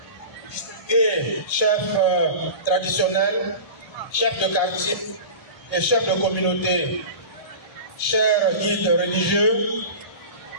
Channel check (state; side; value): late; right; 1.8 ms